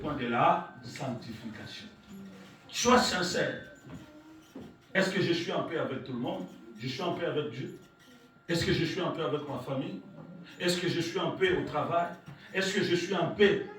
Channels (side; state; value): both; identical; correlation 1.00